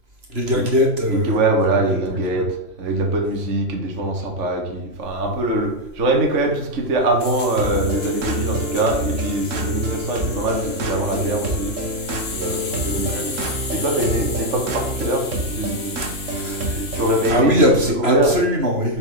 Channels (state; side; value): late; left; 2.5 ms